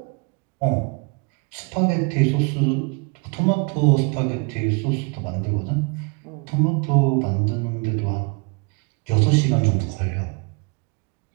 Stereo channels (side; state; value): left; quieter; 32.0 dB